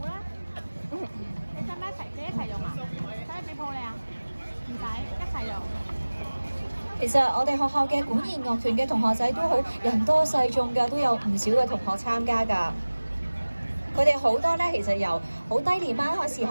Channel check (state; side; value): inverted; both; correlation -1.00